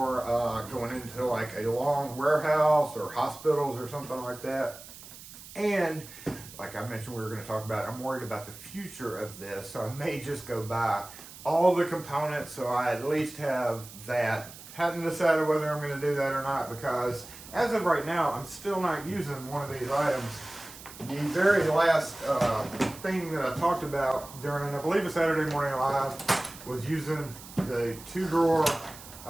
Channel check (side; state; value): right; noise; hiss, 16 dB below the sound